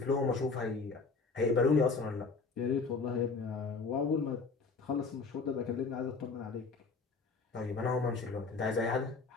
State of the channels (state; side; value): quieter; right; 4.4 dB